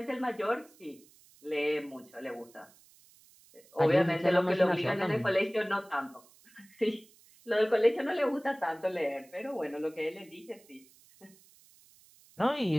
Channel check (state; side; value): noise; right; hiss, 27 dB below the sound